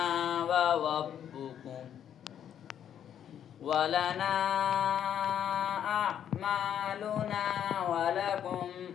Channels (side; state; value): right; quieter; 9.5 dB